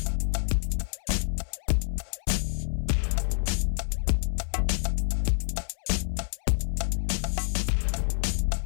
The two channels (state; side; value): silent; right; 60 dB below the other